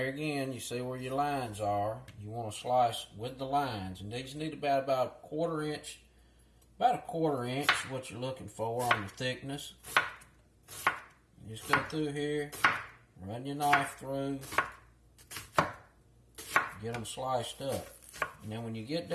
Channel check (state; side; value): identical; both; correlation 1.00